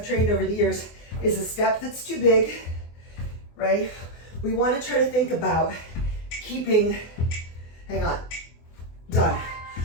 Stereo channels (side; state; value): right; late; 24 ms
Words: trained over the years is a step that's too big, right? We want to try to think about keeping, hang on, done.